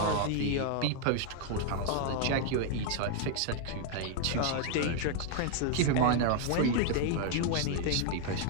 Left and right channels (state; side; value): different; both; correlation 0.00